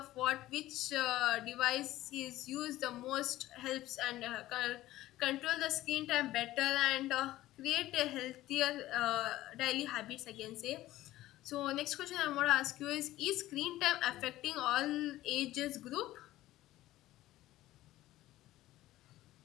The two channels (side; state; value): right; quieter; 15.7 dB